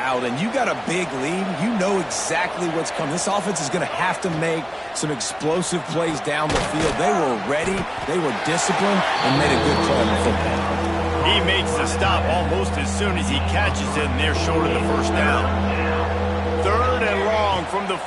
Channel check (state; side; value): identical; both; correlation 1.00